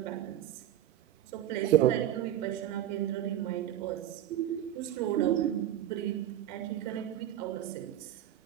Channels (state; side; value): quieter; left; 12.0 dB